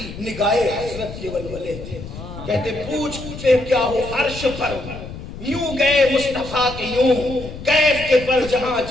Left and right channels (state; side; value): noise; left; rumble, 11 dB below the sound